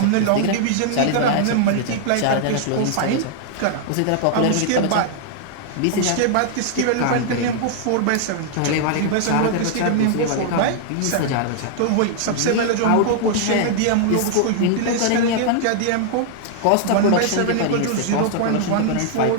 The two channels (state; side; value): different; both; correlation -0.01